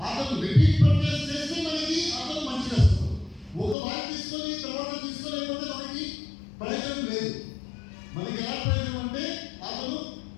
అతను రిపీట్ పర్చేస్ చేస్తే మనకి అతను మంచిగా వస్తుంది. ఒక వాయి తీసుకొని తర్వాత తీసుకోలేకపోతే మనకి ప్రయోజనం లేదు. మనకి ఎలా ప్రయోజనం అంటే అతను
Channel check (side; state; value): right; drops out; at 3.8 s